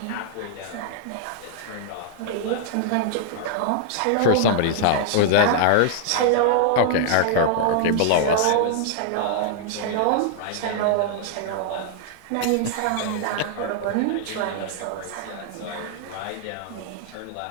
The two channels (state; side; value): different; both; correlation -0.01